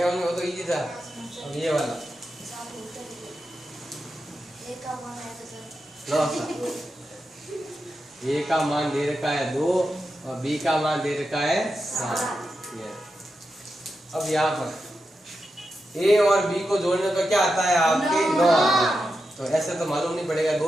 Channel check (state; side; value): normal; both; correlation 0.88